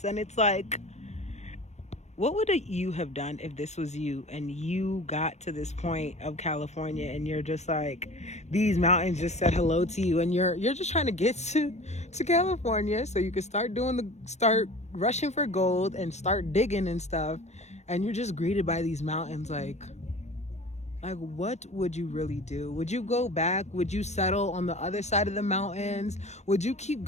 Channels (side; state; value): right; late; 0.33 ms